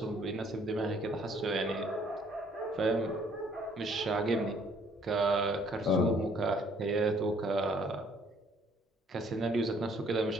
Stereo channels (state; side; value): normal; both; correlation 0.62